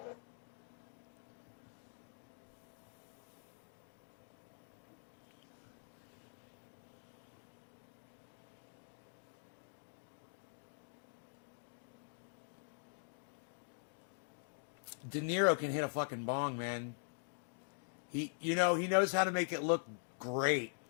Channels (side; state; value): right; silent; digital silence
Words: De Niro can hit a fucking bong, man. He knows how to make it look great.